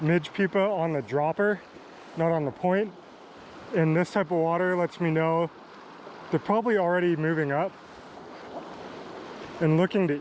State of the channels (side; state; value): both; identical; correlation 1.00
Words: pupa on the dropper, not on the point, in this type of water lets me know they're probably already moving up and looking